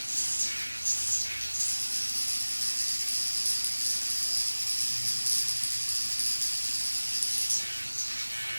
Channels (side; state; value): both; inverted; correlation -1.00